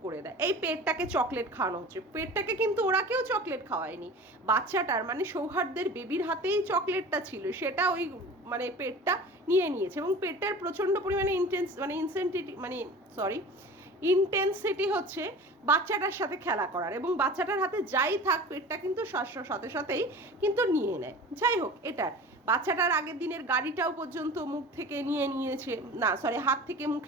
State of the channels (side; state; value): both; normal; correlation 0.38